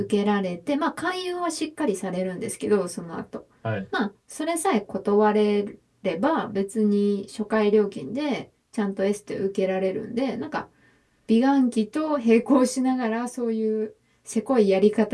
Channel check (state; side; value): identical; both; correlation 1.00